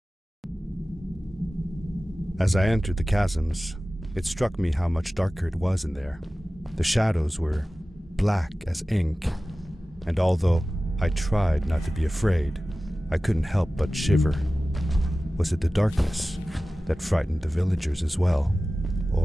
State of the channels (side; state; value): both; normal; correlation 0.96